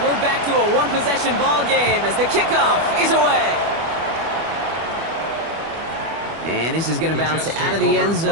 we're back to a one-possession ball game as the kickoff is away. And this is going to bounce out of the end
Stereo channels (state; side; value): late; left; 25 ms